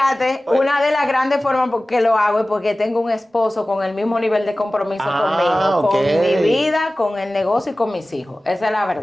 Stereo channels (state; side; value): normal; both; correlation 0.97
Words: Oye. una de las grandes formas por que lo hago es porque tengo un esposo con el mismo nivel de compromiso conmigo, con mi vida, con el negocio y con mis hijos. Esa es la